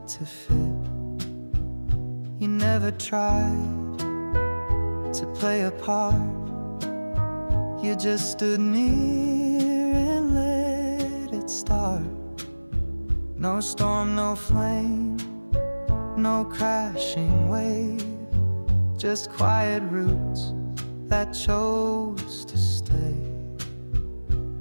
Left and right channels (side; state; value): both; inverted; correlation -1.00